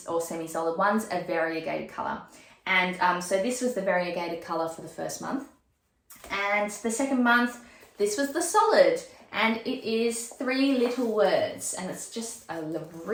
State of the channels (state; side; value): identical; both; correlation 1.00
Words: semi-solid. One's a variegated color. And so this was the variegated color for the first month. And the second month, this was the solid. And it is 3 little words. And it's just a